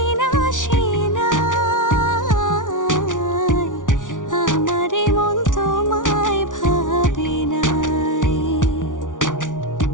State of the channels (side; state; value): right; late; 0.88 ms